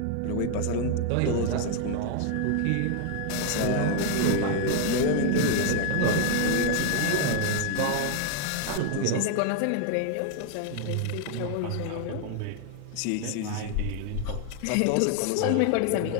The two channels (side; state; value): both; different; correlation 0.00